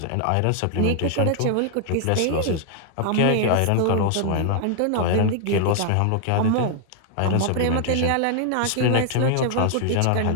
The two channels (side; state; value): both; different; correlation 0.00